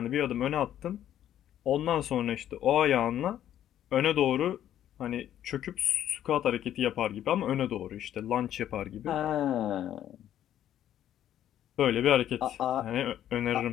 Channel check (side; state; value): right; quieter; 11.2 dB